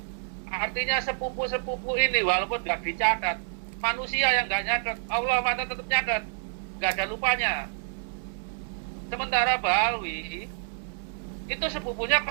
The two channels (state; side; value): silent; left; 59 dB below the other